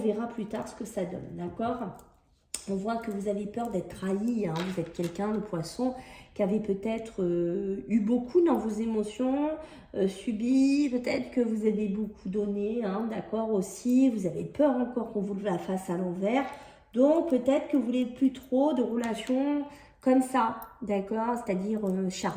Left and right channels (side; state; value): both; identical; correlation 1.00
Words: plus tard ce que ça donne, d'accord? On voit que vous avez peur d'être trahi, hein. Vous êtes quelqu'un, le poisson, qui avait peut-être eu beaucoup dans vos émotions, subi, peut-être que vous avez beaucoup donné, hein, d'accord aussi. Vous avez peur encore qu'on vous la fasse à l'envers. Donc, peut-être que vous voulez plus trop de relations comme ça, d'accord? C'est-à-dire